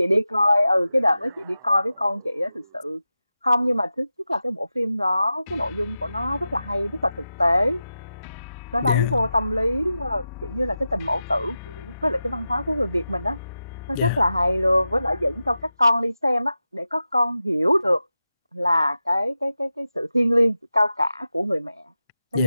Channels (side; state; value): both; inverted; correlation -0.92